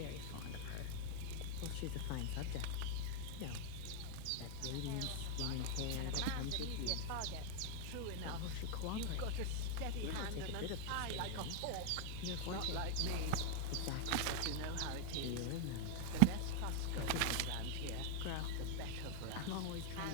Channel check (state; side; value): different; both; correlation 0.00